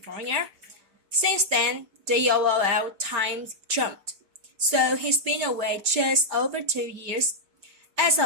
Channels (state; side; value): late; left; 5.1 ms